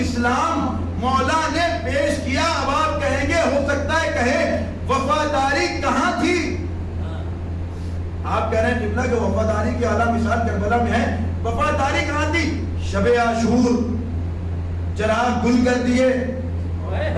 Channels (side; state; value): both; identical; correlation 1.00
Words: اسلام مولا نے پیش کیا. اب آپ کہیں گے, ہو سکتا ہے کہیں وفاداری کہاں تھی؟ آپ کہہ رہے ہیں قبلہ کہ وفاداری کی اعلیٰ مثال کربلا میں ہے. وفاداری کہاں تھی؟ شب عاشور چراغ گل کر دیے.